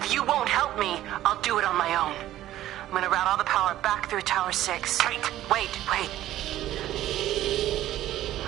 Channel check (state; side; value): quieter; left; 13.7 dB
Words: you won't help me, I'll do it on my own. I'm gonna route all the power back through Tower 6. Kate! Wait.